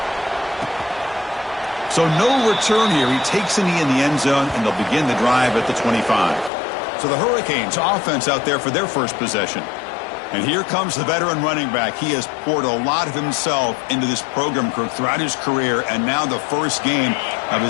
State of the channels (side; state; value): right; drops out; at 6.5 s